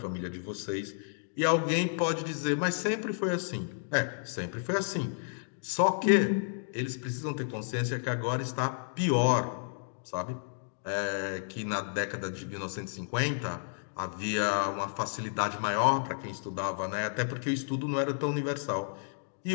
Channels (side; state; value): right; silent; digital silence